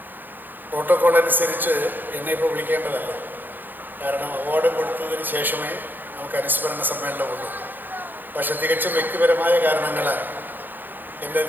പ്രോട്ടോകോൾ അനുസരിച്ച് എന്നെ ഇപ്പോൾ വിളിക്കേണ്ടതല്ല. കാരണം അവാർഡ് കൊടുത്തതിന് ശേഷമേ നമുക്ക് അനുസ്മരണ സമ്മേളനമുള്ളൂ. പക്ഷെ തികച്ചും വ്യക്തിപരമായ കാരണങ്ങളാൽ, എൻ്റെ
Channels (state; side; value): late; left; 0.089 ms